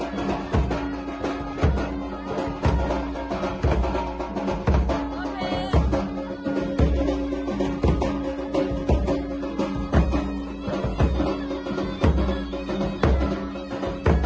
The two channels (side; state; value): both; identical; correlation 1.00